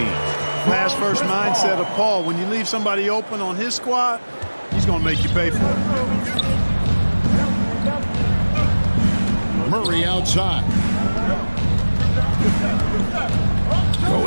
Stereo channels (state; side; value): inverted; both; correlation -1.00